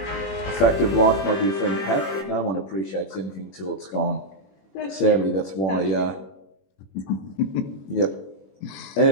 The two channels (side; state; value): right; late; 21 ms